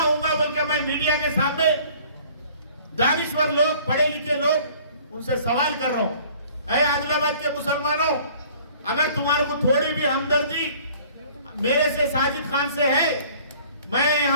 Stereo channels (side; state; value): both; inverted; correlation -0.52